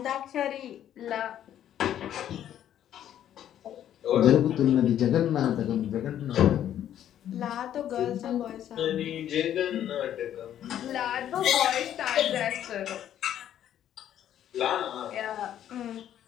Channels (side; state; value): right; quieter; 10.9 dB